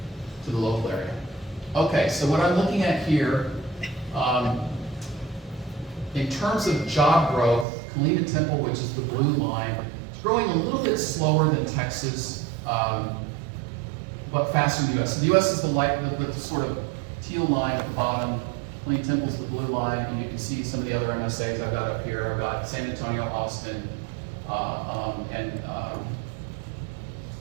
to the local area. Okay, so what I'm looking at here In terms of job growth, Killeen and Temple, which is the blue line, is growing a little bit slower than Texas, but faster than the US. So the US is the sort of teal line at the bottom. Killeen Temple's the blue line, and you can see some of the other MSAs I've got up here. I've got San Antonio, Austin, and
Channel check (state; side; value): drops out; left; at 7.7 s